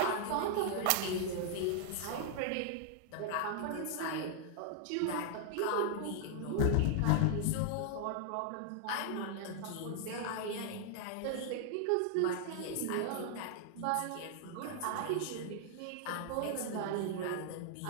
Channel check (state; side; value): different; both; correlation 0.00